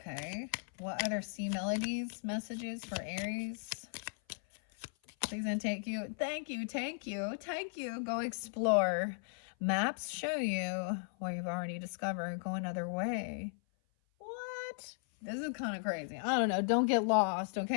What other sea melodies, messages for Aries? Please and take you. Thank you, thank you, thank you. Go explore. Maps show you where you've already discovered. Go another way. What? This is kind of crazy. I don't know. Don't get lost,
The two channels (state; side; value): silent; right; 53 dB below the other